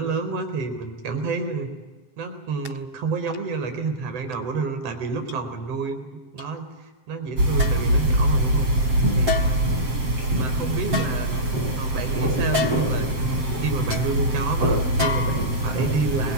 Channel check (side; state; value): left; late; 7.7 ms